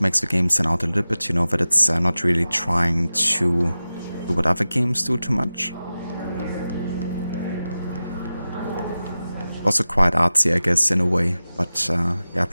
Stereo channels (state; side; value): inverted; both; correlation -0.95